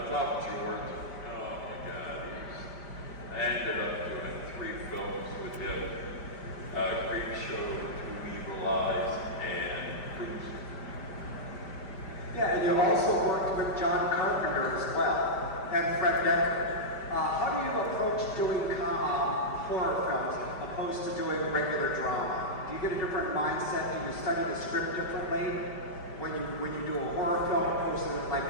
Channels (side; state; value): right; late; 5.0 ms